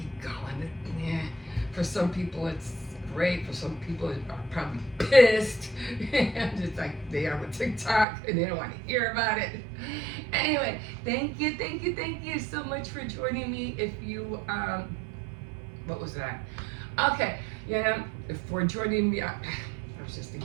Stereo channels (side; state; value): left; drops out; at 8.1 s